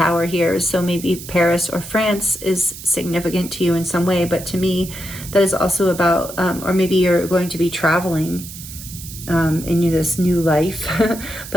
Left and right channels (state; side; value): noise; right; hiss, 13 dB below the sound